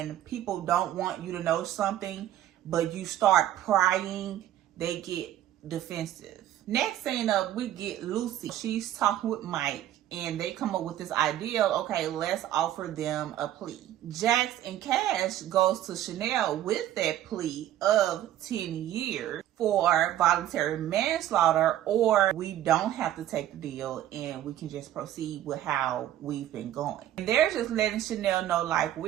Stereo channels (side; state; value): left; quieter; 12.4 dB